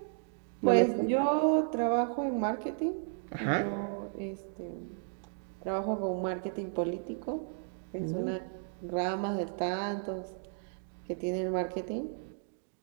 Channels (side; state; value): left; silent; digital silence